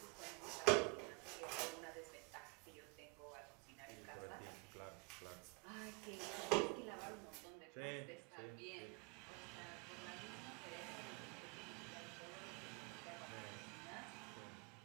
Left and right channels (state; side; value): quieter; left; 28.7 dB